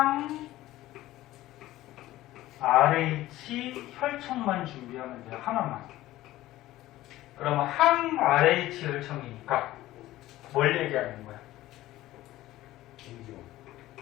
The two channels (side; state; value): right; quieter; 15.8 dB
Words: RH 혈청만 준비하면 돼요. 하나만. 그러면 항 RH 혈청이니까 뭘 얘기하는 거야?